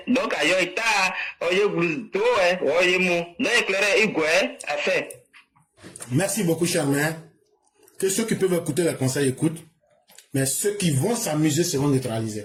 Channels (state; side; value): identical; both; correlation 1.00